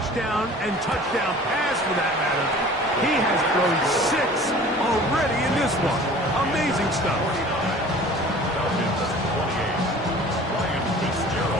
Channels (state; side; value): normal; both; correlation 0.45